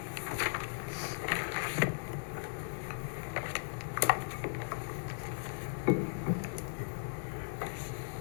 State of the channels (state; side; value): silent; right; digital silence